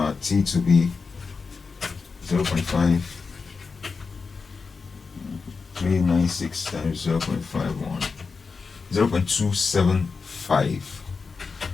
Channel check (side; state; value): right; quieter; 4.8 dB